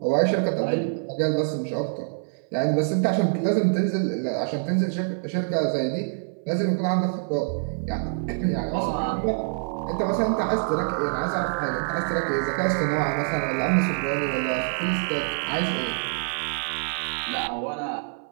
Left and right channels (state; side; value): silent; left; 59 dB below the other